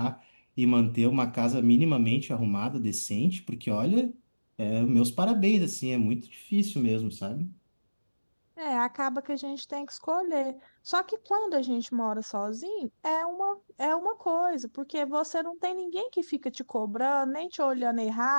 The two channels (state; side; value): inverted; both; correlation -1.00